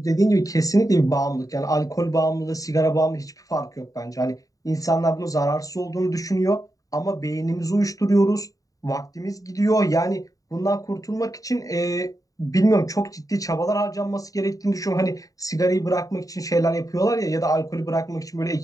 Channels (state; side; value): late; right; 0.17 ms